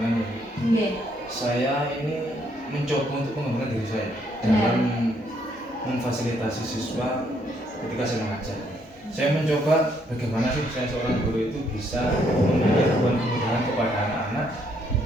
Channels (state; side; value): normal; both; correlation 0.71